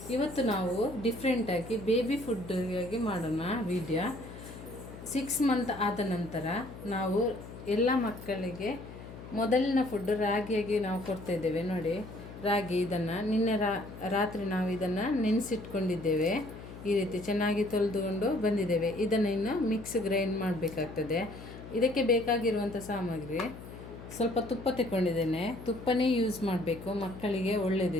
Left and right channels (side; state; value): left; noise; hum, 14 dB below the sound